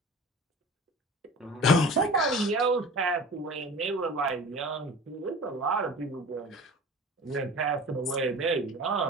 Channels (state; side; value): normal; both; correlation 0.39